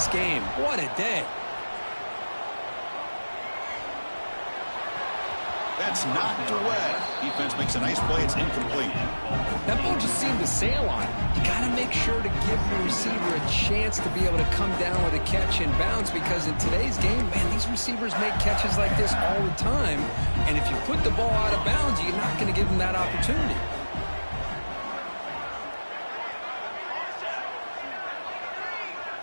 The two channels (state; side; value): inverted; both; correlation -1.00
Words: game. What a day. That's knocked away. Defense makes a nice play. It's incomplete. That ball just seemed to sail on it. You got to make sure to give the receiver a chance to be able to come down with a catch and bounce, because in today's game, man, these receivers make catches like this all the time. And if you put the ball out of bounds, you're not going to give them that opportunity.